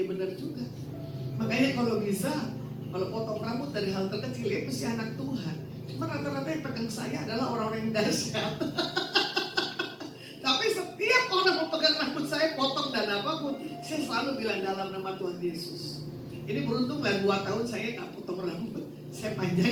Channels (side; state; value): both; identical; correlation 1.00